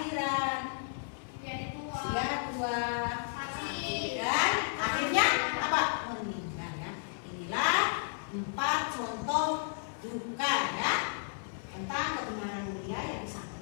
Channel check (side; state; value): right; silent; 56 dB below the other